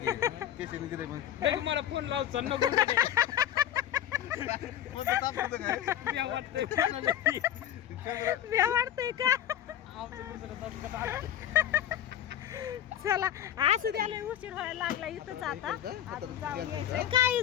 केशवने दिलंय मग तरी मला फोन लावचा नको. कोणतं ताप होतं काय? मी वाटतंय फोनाला की. भ्या वाटतंय का? आमचं दुसरं दणकट आलं. चला असं द्यायला उशीर व्हायला लागला इथंच. आता अजून जाऊन यायचंय. काय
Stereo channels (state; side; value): quieter; right; 11.2 dB